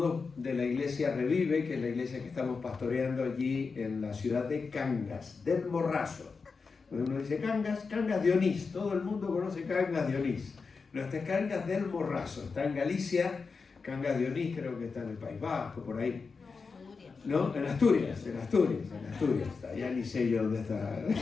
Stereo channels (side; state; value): right; quieter; 4.8 dB